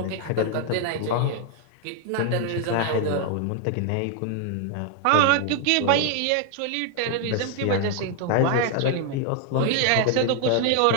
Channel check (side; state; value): both; different; correlation 0.00